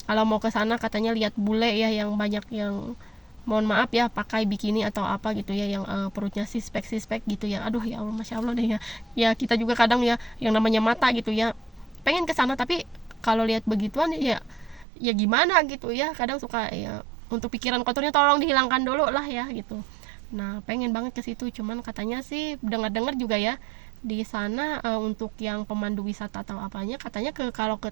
kalau mau ke sana katanya lihat bule ya, yang banyak yang mohon maaf ya pakai bikini atau apa gitu ya, yang perutnya sispek gitu ya. Aduh ya Allah, masya Allah deh ya. Ya kita juga kadang ya yang namanya mata gitu ya, pengen ke sana, tapi kalau lihat begituan ya gimana gitu ya, kadang suka ya, untuk pikiran kotornya tolong dihilangkan dulu lah ya gitu. Nah pengen banget ke situ, cuman katanya sih dengar-dengar juga ya di sana untuk yang pemandu wisata atau apanya, katanya kalau ke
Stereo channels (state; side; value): drops out; left; at 14.9 s